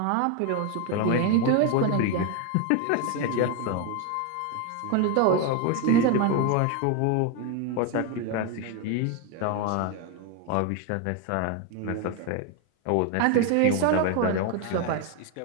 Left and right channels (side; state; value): both; different; correlation 0.01